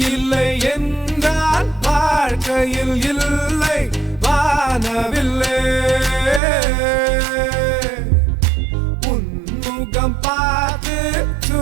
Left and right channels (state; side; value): drops out; left; at 6.4 s